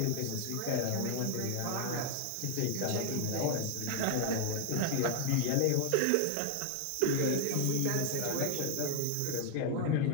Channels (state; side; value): different; both; correlation 0.00